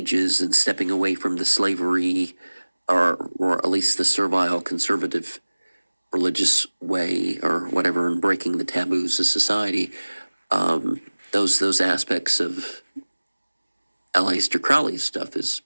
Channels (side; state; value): both; inverted; correlation -1.00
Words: and stepping away from the slavery or at least the servile conservative religious way or whatever, and breaking the taboos of society, those aspects of Aleister Crowley's stuff is